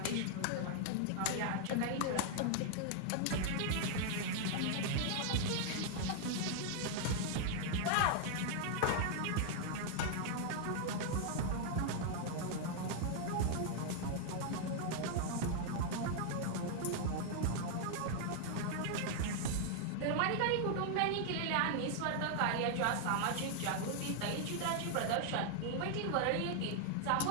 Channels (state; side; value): different; both; correlation 0.00